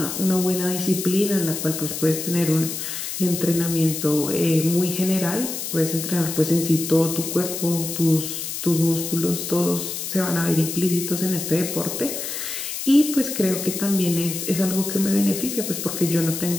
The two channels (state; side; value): noise; left; hiss, 5 dB below the sound